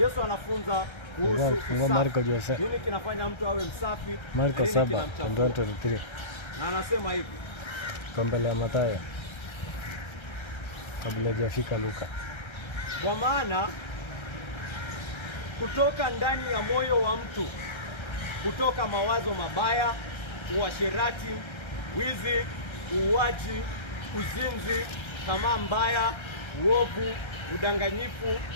anafunza kuhusu Marko Jose. Nini kinafanya mtu awe msafi? Marko 7:23. Na anasema hivi. Kwa mbele ya Mathayo. Kabla hajafika Luka. Kwa maana kutoka ndani ya moyo wa mtu kutoka mawazo mabaya, uasherati, wizi, uuaji, uzinzi, tamaa mbaya, uovu, udanganyifu,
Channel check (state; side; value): late; right; 1.3 ms